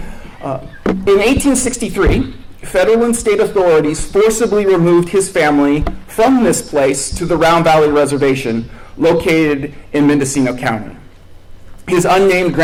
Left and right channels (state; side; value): identical; both; correlation 1.00